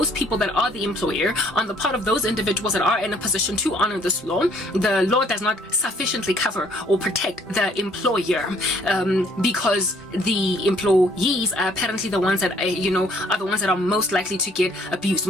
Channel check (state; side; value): normal; both; correlation 0.62